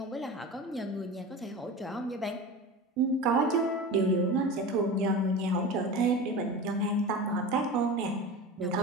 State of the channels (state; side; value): normal; both; correlation 0.30